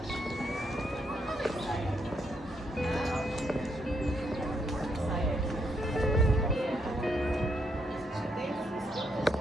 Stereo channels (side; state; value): both; normal; correlation 0.76